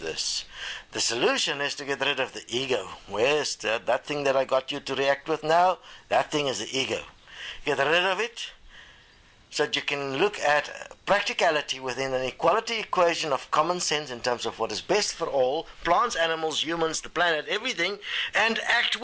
The solution is to get rid of the ego. Where's that thing that I got you to react with now? That thing is the ego. Get rid of it so that you can look at practicality within an equality equation of common sense in terms of what is best for all, plants, animals, humans, the planet, everything, and act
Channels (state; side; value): identical; both; correlation 1.00